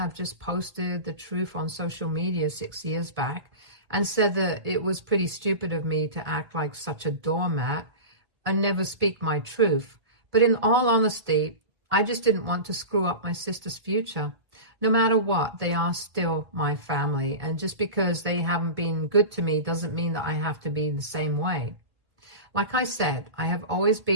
just posted the truth on social media 6 years back and said that it was pretty stupid of me to act like such a doormat and never speak my truth. But in all honesty, I just didn't want to screw up my sister's future. No matter what, they are still my family. And just because they haven't been good to me doesn't mean that I have to be the same way. Like I said, I have always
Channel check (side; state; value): left; late; 1.8 ms